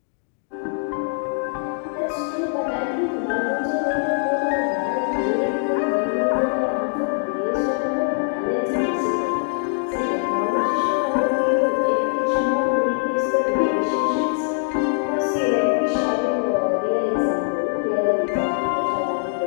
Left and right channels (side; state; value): right; silent; 59 dB below the other